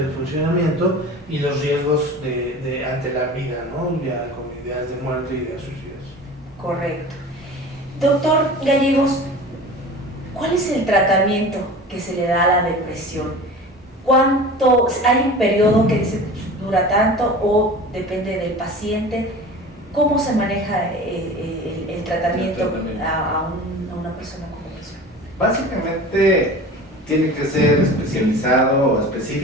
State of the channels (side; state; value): both; normal; correlation 0.37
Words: funcionamiento y los riesgos ante la vida, ¿no? Ya con ideas de muerte y ideas suicidas. Correcto. Doctor Gallegos, ¿cuál es el tratamiento que se le da a la depresión? ¿Cuánto? ¿Hay un periodo que dice dura tanto o depende del paciente? ¿Cómo se maneja el tratamiento a una persona con depresión? Básicamente tiene que ser especializado o